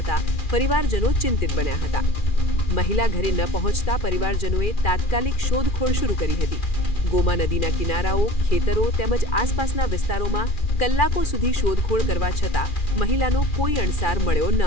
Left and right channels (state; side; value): late; right; 2.4 ms